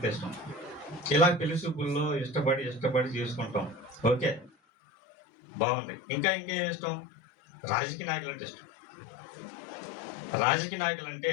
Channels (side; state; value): right; drops out; at 4.5 s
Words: ఇష్టం. ఇలా పెళ్లి చూపుల్లో ఇష్టపడి చేసుకుంటాం. ఓకే, బాగుంది. ఇంకేం ఇష్టం? రాజకీయ నాయకులు అంటే ఇష్టం. రాజకీయ నాయకులు అంటే